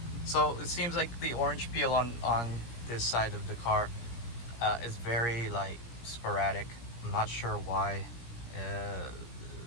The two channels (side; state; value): right; late; 17 ms